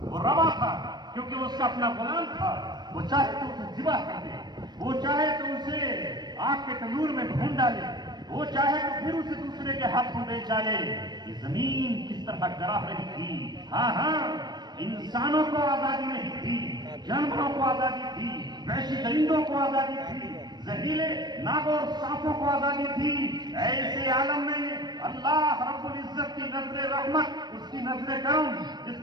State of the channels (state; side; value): late; left; 0.20 ms